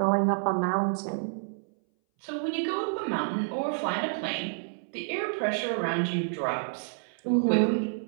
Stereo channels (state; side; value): silent; left; 59 dB below the other